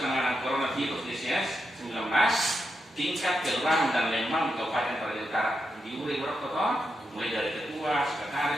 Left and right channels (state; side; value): normal; both; correlation 0.85